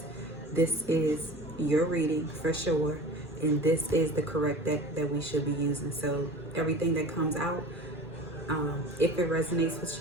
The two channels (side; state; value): both; normal; correlation 0.38